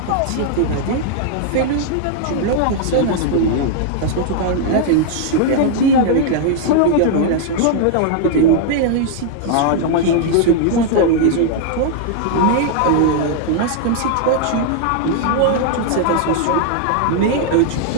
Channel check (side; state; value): both; different; correlation -0.01